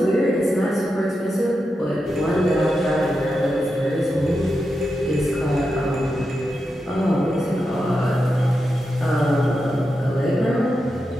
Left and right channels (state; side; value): normal; both; correlation 0.88